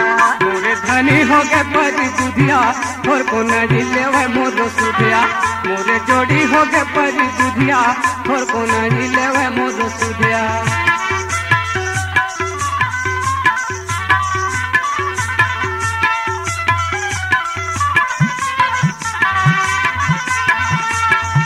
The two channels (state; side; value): identical; both; correlation 1.00